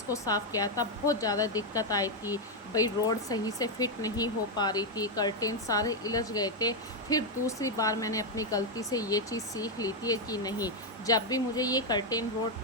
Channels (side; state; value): both; normal; correlation 0.02